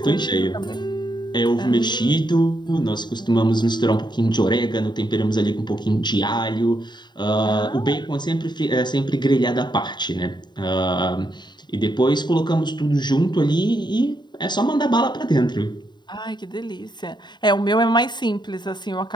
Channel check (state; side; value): late; right; 0.21 ms